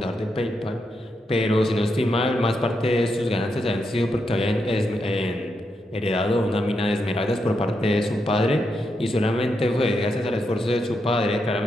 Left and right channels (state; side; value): normal; both; correlation 0.83